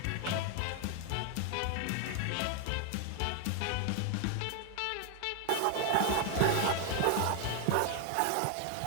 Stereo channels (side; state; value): both; different; correlation 0.00